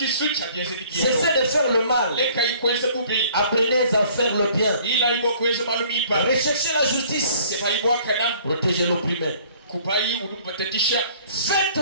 Cessez de faire le mal. Apprenez à faire le bien. Recherchez la justice. Protégez l'opprimé.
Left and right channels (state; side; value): inverted; both; correlation -0.55